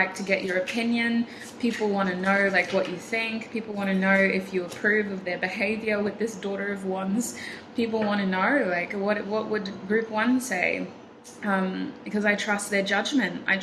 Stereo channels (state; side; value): identical; both; correlation 1.00